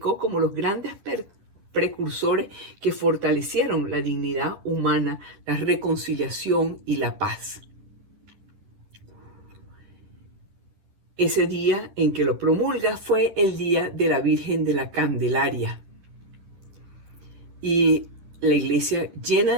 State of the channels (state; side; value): late; left; 10 ms